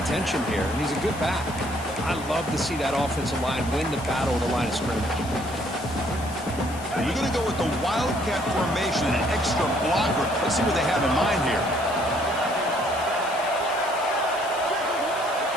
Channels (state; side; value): noise; left; hiss, 16 dB below the sound